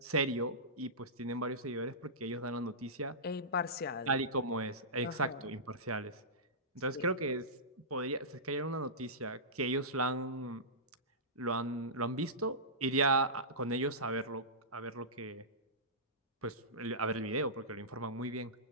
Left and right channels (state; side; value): normal; both; correlation -0.18